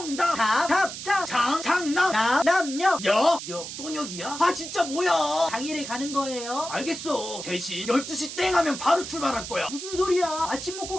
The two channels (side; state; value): right; noise; hiss, 9 dB below the sound